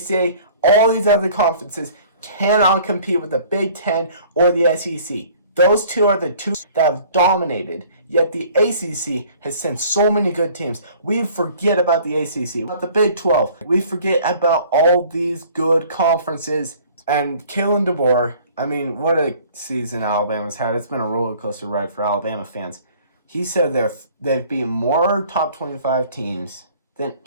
all these other conferences cannot compete with the Big 10 or the SEC. Those two are the two that have dominated. Yet the ACC has sent so many good teams. We forget about the ACC, about the Big 12. We forget about all these good conferences. And Kalen DeBoer, I mean, what a season Alabama's had. It's been a roller coaster ride for Alabama fans. He said they've beaten more top 25 teams than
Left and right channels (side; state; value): both; inverted; correlation -0.52